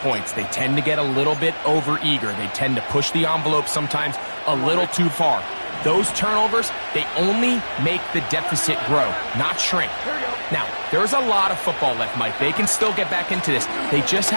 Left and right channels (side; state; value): both; inverted; correlation -1.00